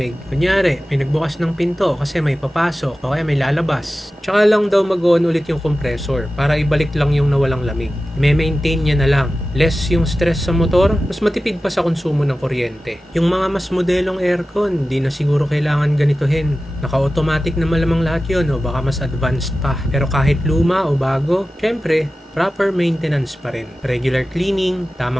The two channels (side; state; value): both; normal; correlation 0.95